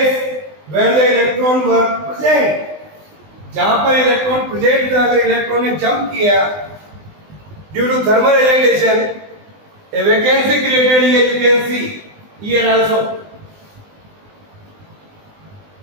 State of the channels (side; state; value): left; late; 20 ms